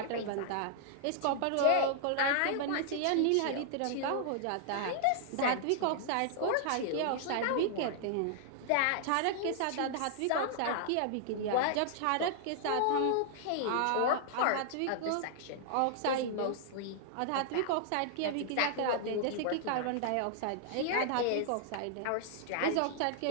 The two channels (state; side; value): different; both; correlation -0.01